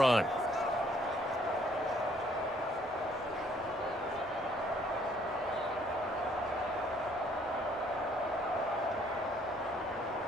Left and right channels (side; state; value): both; normal; correlation 0.64